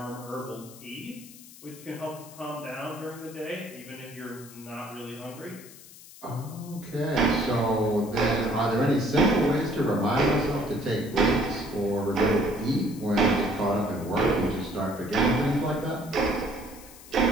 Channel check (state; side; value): noise; left; hiss, 19 dB below the sound